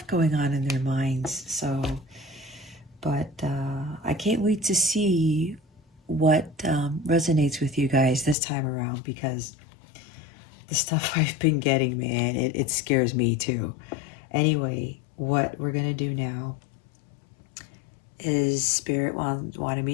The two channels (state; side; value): drops out; right; at 8.3 s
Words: going on in their minds. So, but I can't wait to see what resonates with you guys this time around, because the stuff I've been getting, man, it scares me too. Anyway, what we're going to do now is Spirit wanted